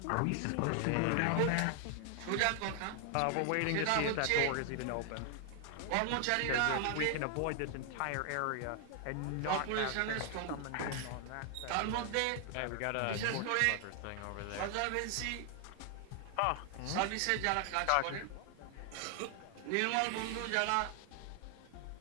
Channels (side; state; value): both; different; correlation 0.00